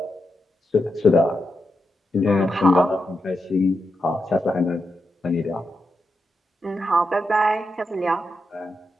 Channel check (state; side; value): normal; both; correlation 0.86